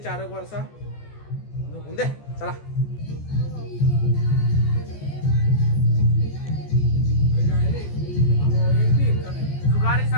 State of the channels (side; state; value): right; late; 14 ms